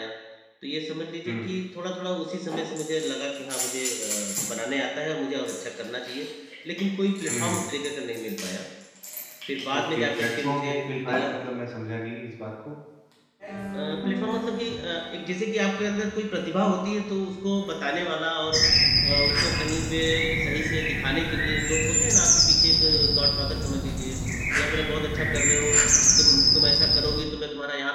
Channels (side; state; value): both; identical; correlation 1.00